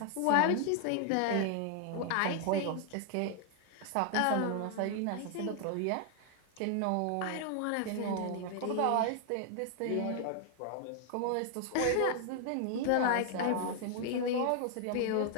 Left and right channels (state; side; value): different; both; correlation 0.00